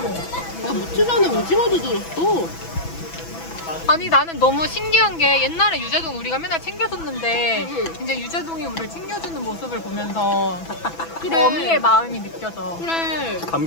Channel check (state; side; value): late; right; 6.0 ms